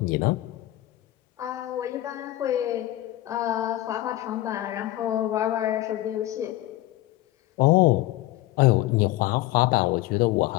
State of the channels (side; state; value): right; quieter; 16.0 dB